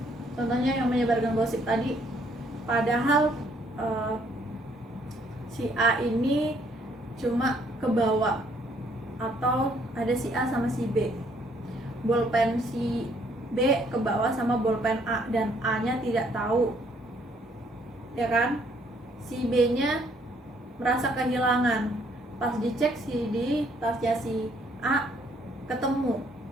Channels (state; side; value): normal; both; correlation 0.66